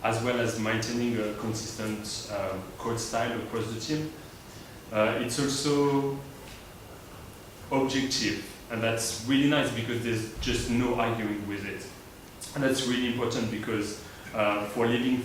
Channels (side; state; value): both; identical; correlation 1.00